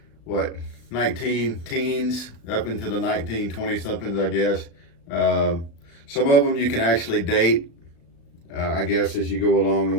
19 teens, up into the 1920-somethings, I guess. Some of them you can actually date, I guess, as you go along. The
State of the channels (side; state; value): right; late; 36 ms